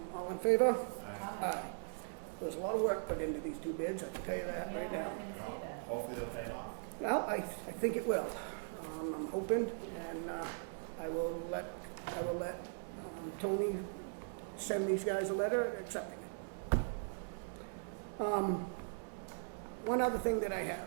All in favor? Aye. Aye. There's a lot of work put into these 2 bids, I can tell you that right Yeah, I now. can Wow. see that. Hopefully they'll pay off. Well, I think it will. I'm hoping, and I will let Toni send these guys a letter accepting it. One other thing that I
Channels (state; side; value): silent; left; digital silence